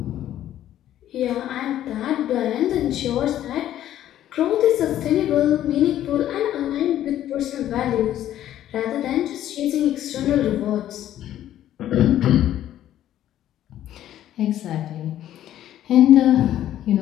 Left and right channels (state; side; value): quieter; right; 12.1 dB